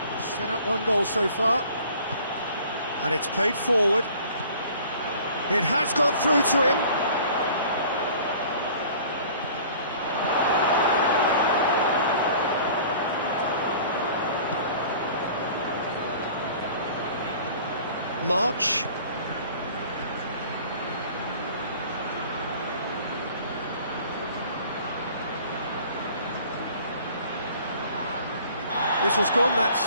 set up one goal so far. And it's played forward. It has got through to him. March. Whistle's gone, that's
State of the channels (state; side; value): inverted; both; correlation -0.49